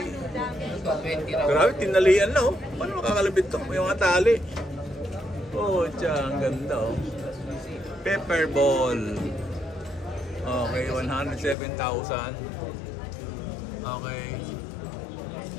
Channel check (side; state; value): right; drops out; at 11.6 s